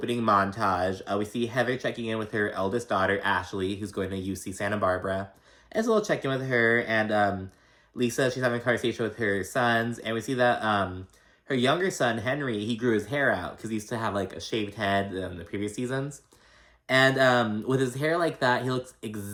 montage. We see Heather checking in with her eldest daughter, Ashley, who's going to UC Santa Barbara. And it's a little check-in with her, and Lisa, she's having a conversation with her sons, and we see that her younger son, Henry, he grew his hair out because he used to have like a shaved head in the previous seasons. And with his hair like that, he looks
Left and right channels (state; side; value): identical; both; correlation 1.00